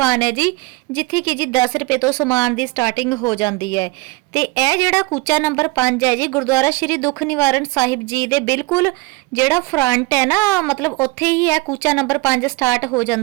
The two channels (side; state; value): left; quieter; 23.2 dB